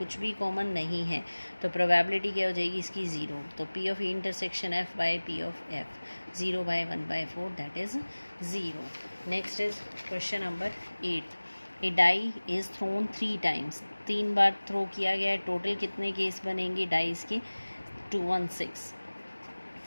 भी कॉमन नहीं है, तो प्रोबेबिलिटी क्या हो जाएगी इसकी 0। तो P of intersection F by P of F, 0/1/4, that is 0। Next is question number 8। A die is thrown 3 times. 3 बार थ्रो किया गया है। टोटल कितने केस बनेंगे डाइस के, 2, 1, 6।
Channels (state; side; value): inverted; both; correlation -1.00